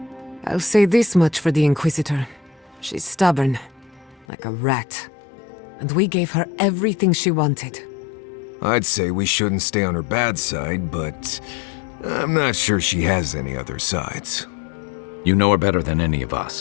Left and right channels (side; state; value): right; drops out; at 4.2 s